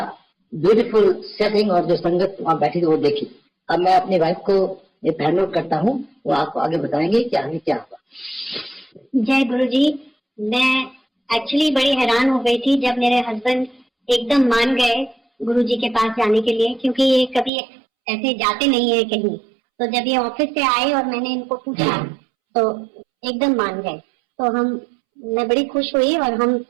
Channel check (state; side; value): drops out; left; at 17.5 s